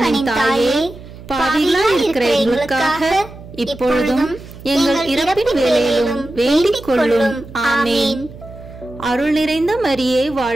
தாயே, பாவிகளாய் இருக்கிற எங்களுக்காக இப்பொழுதும் எங்கள் இறப்பின் வேளையிலும் வேண்டிக் கொள்ளும். ஆமேன். அருள் நிறைந்த மரியே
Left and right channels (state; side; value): noise; right; hum, 17 dB below the sound